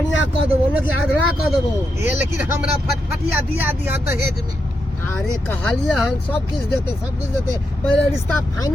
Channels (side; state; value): both; normal; correlation 0.84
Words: कह देबो न कि आधरा कह देबो। ए लेकिन हमरा फटफटिया दिया दिया दहेज में। अरे कहलिए हन सब कुछ देते पहले रिश्ता